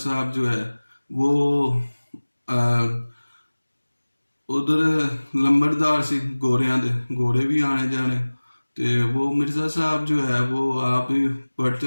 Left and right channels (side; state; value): both; inverted; correlation -1.00